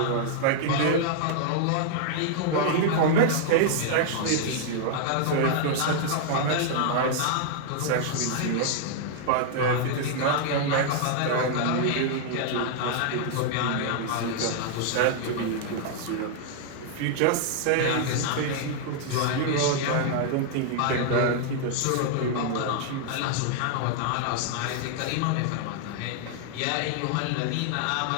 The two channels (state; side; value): different; both; correlation -0.01